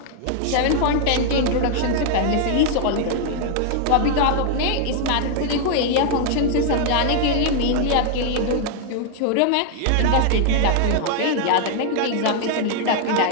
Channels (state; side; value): different; both; correlation 0.00